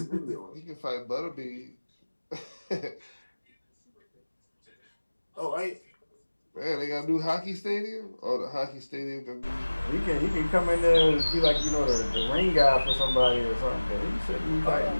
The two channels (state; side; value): inverted; both; correlation -1.00